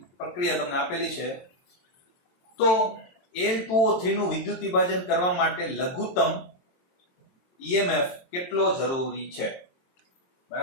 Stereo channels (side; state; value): right; late; 22 ms